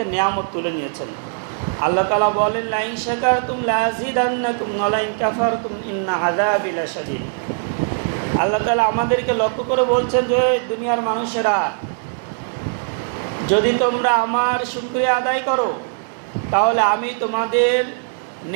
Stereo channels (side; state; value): left; silent; 61 dB below the other